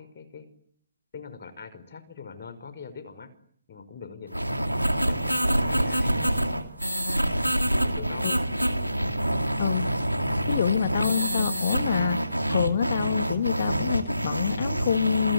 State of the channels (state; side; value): inverted; both; correlation -0.86